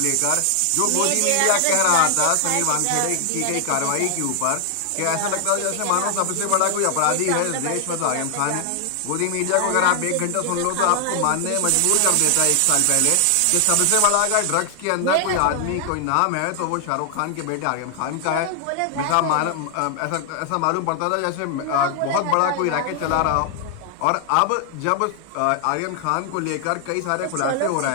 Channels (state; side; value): different; both; correlation 0.00